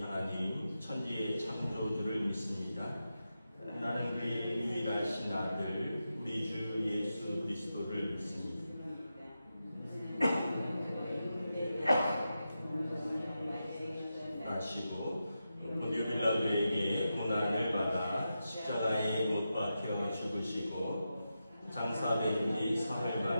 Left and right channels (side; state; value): both; inverted; correlation -0.89